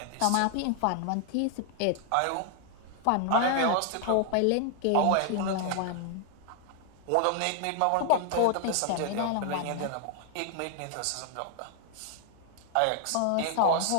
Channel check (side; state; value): both; different; correlation 0.00